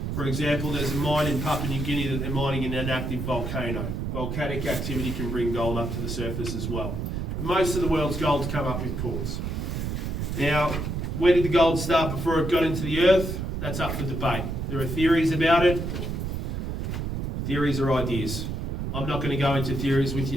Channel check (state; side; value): noise; right; rumble, 3 dB below the sound